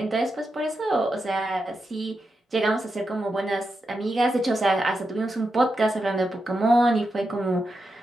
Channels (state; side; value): normal; both; correlation 0.87